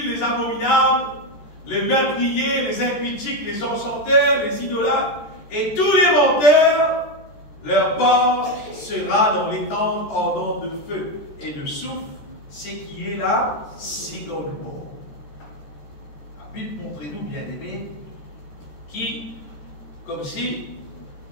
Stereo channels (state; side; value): late; right; 14 ms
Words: les abominables, les meurtriers, les impudiques, les enchanteurs, les idolâtres et tous les menteurs, leur part sera dans les tentes ardentes de feu et de soufre, ce qui est la seconde mort. La Bible montre-nous, bien-aimés, qui, comme si,